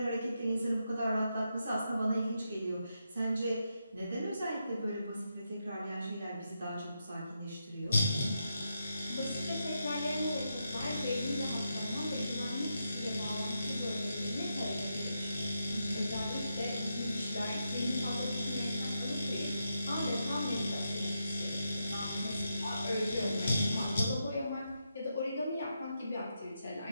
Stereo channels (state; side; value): inverted; both; correlation -0.85